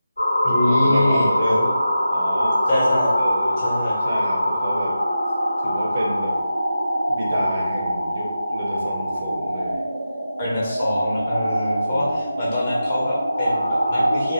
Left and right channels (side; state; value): both; inverted; correlation -0.90